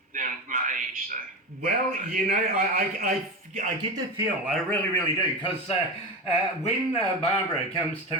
than my age. So. Well, I get the feel. I really, really do, because when Barbara comes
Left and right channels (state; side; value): normal; both; correlation 0.21